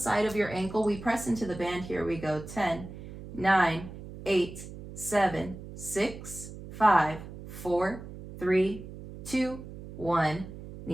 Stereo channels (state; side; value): noise; right; hum, 13 dB below the sound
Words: of your ankle. We press into the band. Here we go. 10, 9, 8, 7, 6, 5, 4, 3, 2, 1.